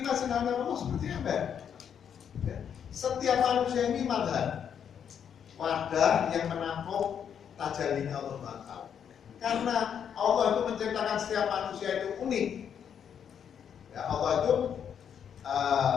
sinar Allah seperti ember. Ya. Setiap manusia ini madhar, wadah yang menampung tajallinya Allah SWT. Karena Allah itu menciptakan setiap manusia itu unik. Ya, Allah itu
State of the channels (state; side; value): quieter; right; 8.2 dB